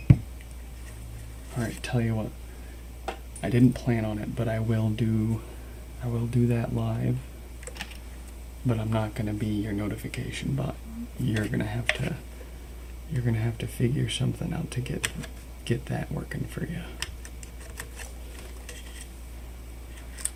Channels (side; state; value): both; identical; correlation 1.00